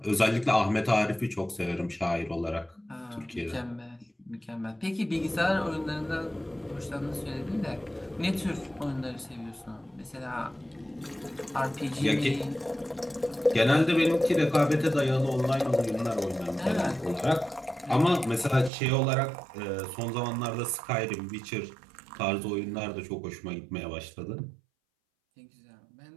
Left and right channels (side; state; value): left; drops out; at 18.7 s